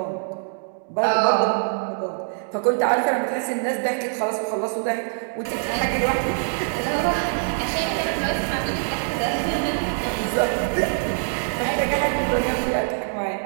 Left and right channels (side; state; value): left; silent; digital silence